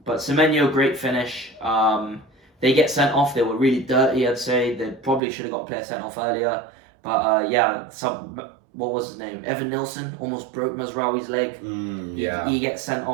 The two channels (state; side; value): drops out; left; at 5.2 s